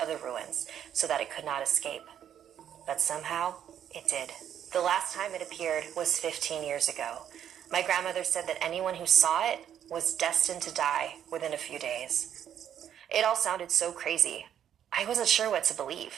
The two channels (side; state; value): left; quieter; 9.7 dB